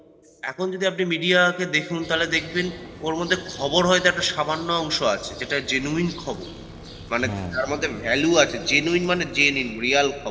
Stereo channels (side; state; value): both; identical; correlation 1.00